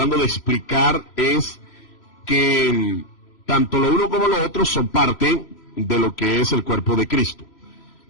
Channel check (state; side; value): late; right; 3.0 ms